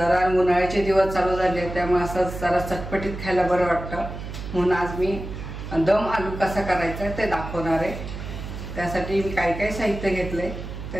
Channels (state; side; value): noise; right; hum, 9 dB below the sound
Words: उन्हाळ्याचे दिवस चालू झाले त्यामुळे असं जरा चटपटीत खायला बरं वाटतं, म्हणून आज मी दम आलू कसा करायचा ते दाखवणार आहे। त्यासाठी मी काय काय साहित्य घेतले